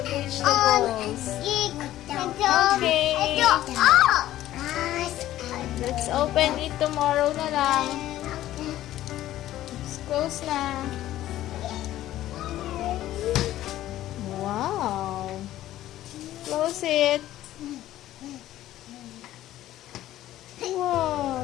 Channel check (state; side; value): quieter; right; 13.9 dB